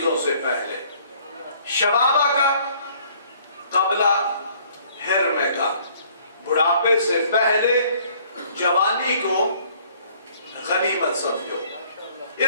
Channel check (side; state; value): both; inverted; correlation -0.59